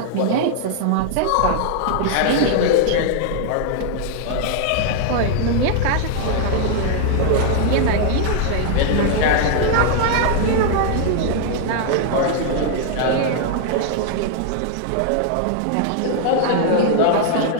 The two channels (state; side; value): different; both; correlation 0.00